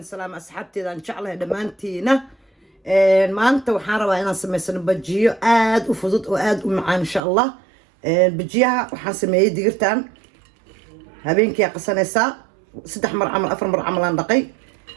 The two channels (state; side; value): drops out; left; at 7.2 s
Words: سلام أصحابتي إذا إن شاء الله دمانتينا ما أنت وحارة أنا سميسن بجيو آد وفضت وآد ومعان إن شاء الله بجيها وحاسمي ديرتان هبينك يا قسنيسا 6 مر عمل 4 مر عملان دقي